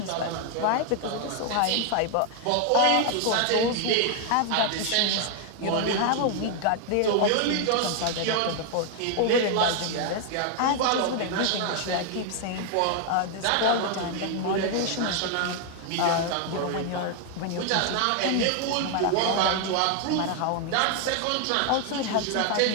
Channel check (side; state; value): both; different; correlation 0.00